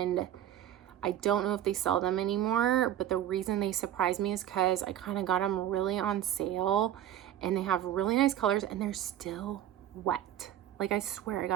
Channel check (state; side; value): quieter; left; 11.5 dB